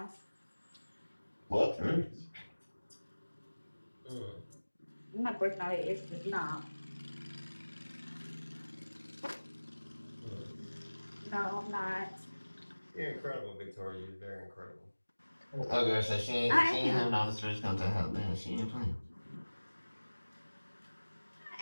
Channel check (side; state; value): both; inverted; correlation -1.00